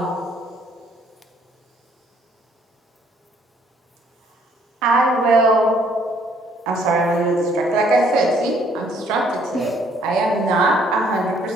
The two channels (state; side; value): normal; both; correlation 0.64